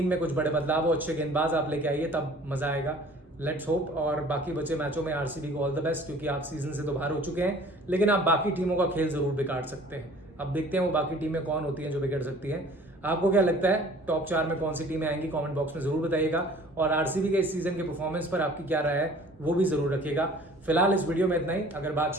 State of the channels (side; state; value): both; normal; correlation 0.50